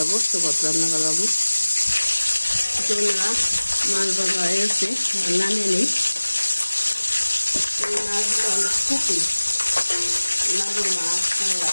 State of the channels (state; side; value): inverted; both; correlation -1.00